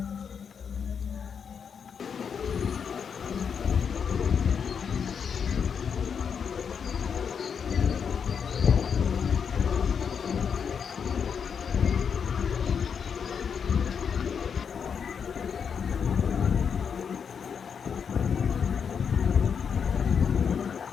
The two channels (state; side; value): quieter; right; 6.8 dB